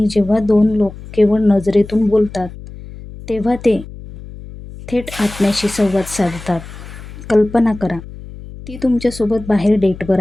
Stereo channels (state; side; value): noise; left; hum, 15 dB below the sound